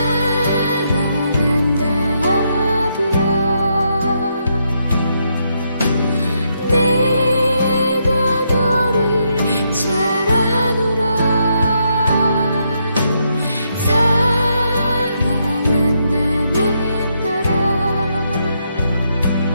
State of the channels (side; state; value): both; inverted; correlation -0.78